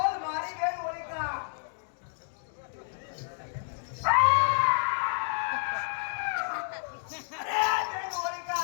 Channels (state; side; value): silent; right; digital silence